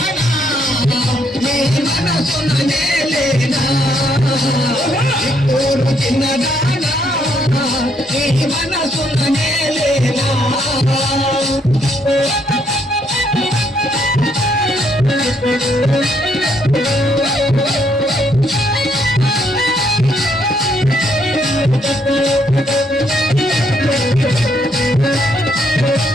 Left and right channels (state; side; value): normal; both; correlation 0.72